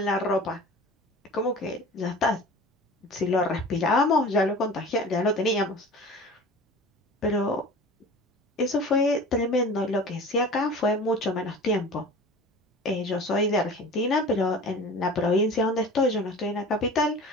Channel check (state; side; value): normal; both; correlation 0.39